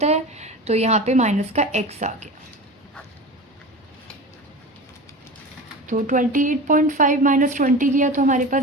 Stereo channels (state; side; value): normal; both; correlation 0.32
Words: है, तो यहाँ पे माइनस का x आ गया। तो 28.5 माइनस 20 किया तो हमारे